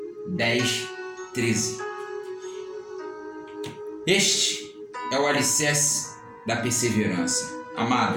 10, 13. Este é o alicerce da perseverança.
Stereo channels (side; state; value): both; identical; correlation 1.00